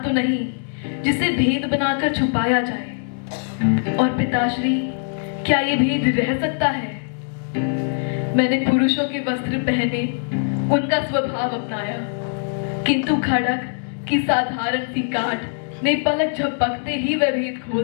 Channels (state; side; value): silent; right; 64 dB below the other